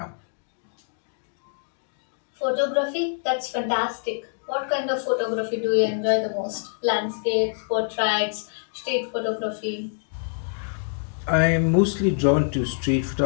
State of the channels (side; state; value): right; silent; digital silence